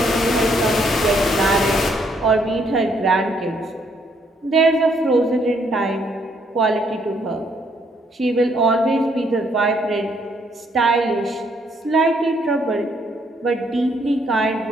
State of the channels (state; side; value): normal; both; correlation 0.70